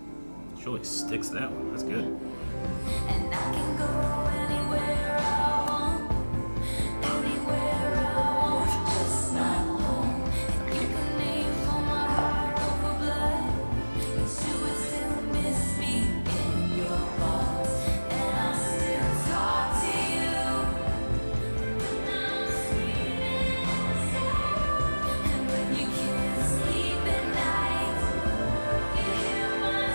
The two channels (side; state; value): both; inverted; correlation -1.00